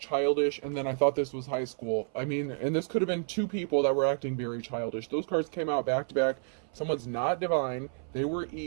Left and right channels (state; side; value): silent; left; 57 dB below the other